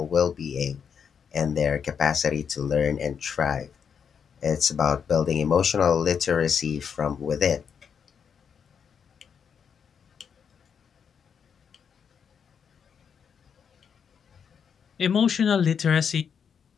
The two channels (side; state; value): right; quieter; 7.1 dB